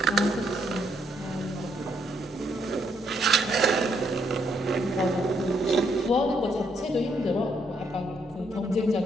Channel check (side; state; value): both; normal; correlation 0.74